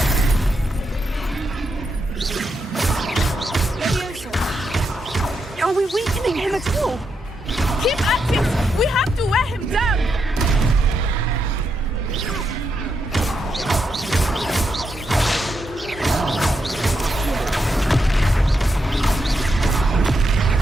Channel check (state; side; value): normal; both; correlation 0.82